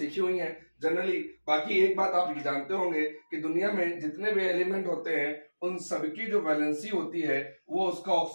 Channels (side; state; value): both; inverted; correlation -1.00